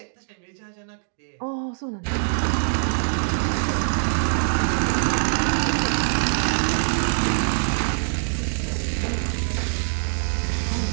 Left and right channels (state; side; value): silent; left; digital silence